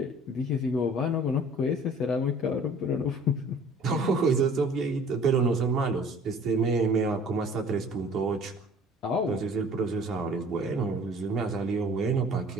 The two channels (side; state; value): both; normal; correlation 0.50